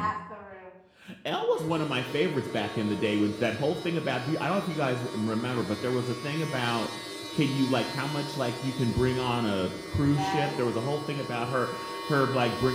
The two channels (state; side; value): identical; both; correlation 1.00